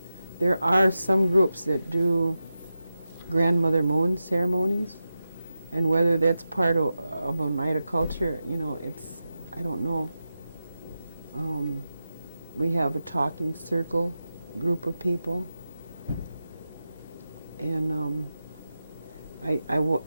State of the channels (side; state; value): both; inverted; correlation -0.92